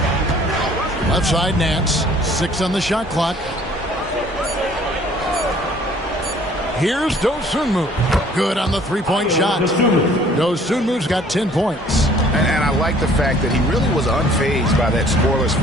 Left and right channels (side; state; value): both; normal; correlation 0.56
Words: Left side Nance. 6 on the shot clock. Here's Dosunmu. Good on the three-point shot. Dosunmu's got 10 points. And I like the fact that he really was unfazed by that scoreless